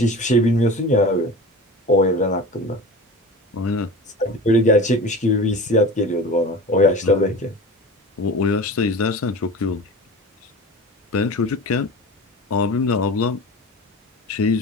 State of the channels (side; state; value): both; normal; correlation 0.34